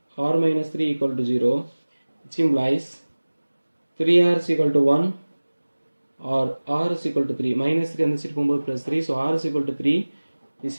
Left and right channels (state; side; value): inverted; both; correlation -1.00